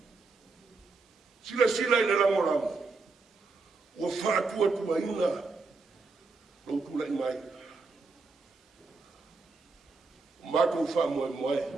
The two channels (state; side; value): quieter; left; 4.0 dB